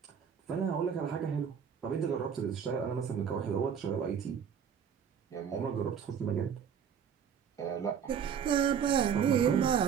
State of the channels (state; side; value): quieter; left; 7.7 dB